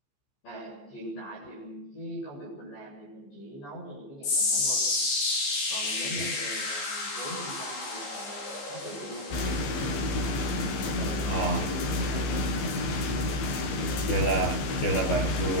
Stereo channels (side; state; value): right; late; 15 ms